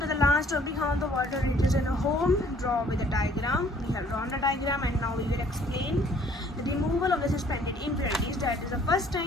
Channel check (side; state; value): both; normal; correlation 0.58